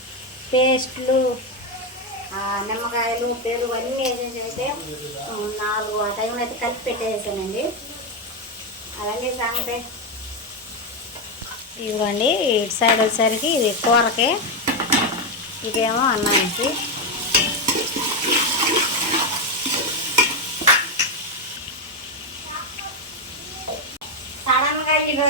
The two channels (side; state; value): both; normal; correlation 0.07